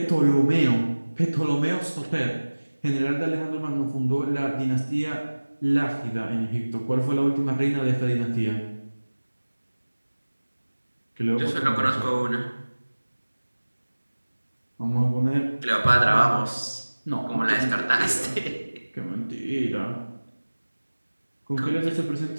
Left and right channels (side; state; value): both; inverted; correlation -1.00